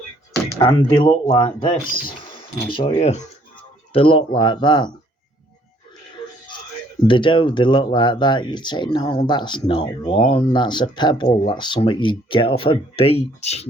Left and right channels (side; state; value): both; normal; correlation 0.63